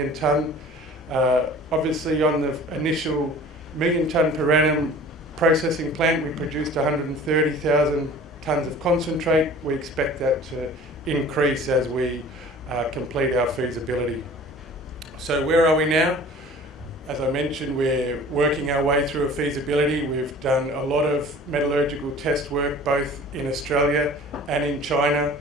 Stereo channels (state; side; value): normal; both; correlation 0.45